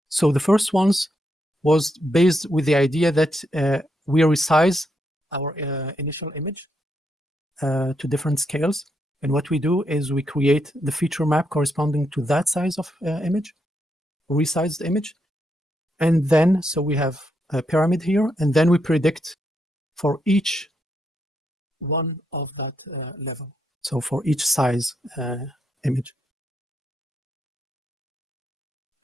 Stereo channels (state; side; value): normal; both; correlation 0.80